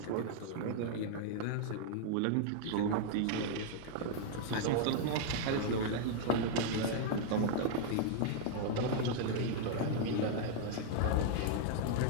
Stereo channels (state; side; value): different; both; correlation -0.01